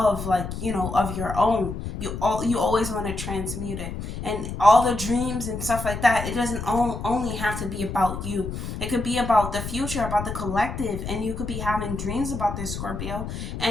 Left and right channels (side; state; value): left; noise; rumble, 6 dB below the sound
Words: like, of your own. You always want to transmute it. And all the dreams and stuff like that, it doesn't only have to be about you. It could be about the future, about the collective, and you could be having dreams about this, Scorpio,